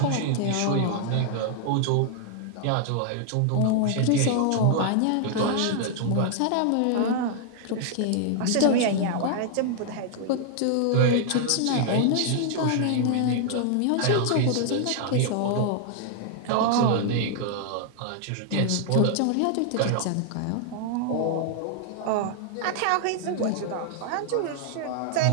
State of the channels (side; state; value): both; different; correlation 0.00